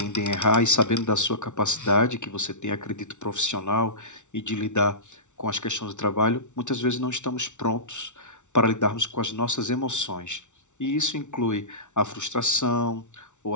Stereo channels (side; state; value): right; late; 0.84 ms